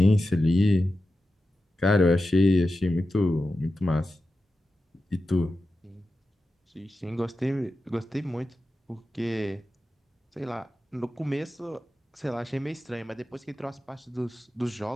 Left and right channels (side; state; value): both; normal; correlation 0.92